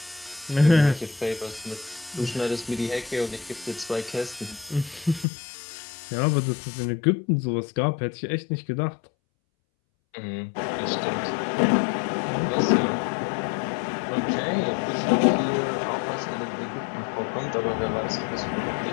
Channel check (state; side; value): drops out; right; at 5.2 s